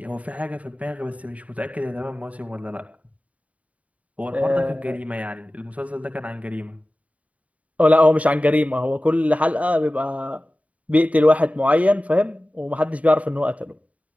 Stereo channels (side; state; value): left; late; 0.068 ms